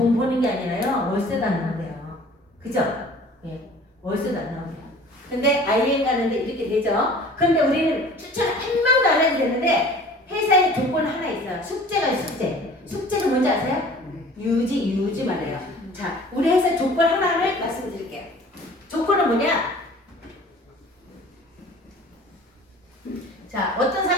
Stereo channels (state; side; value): normal; both; correlation 0.47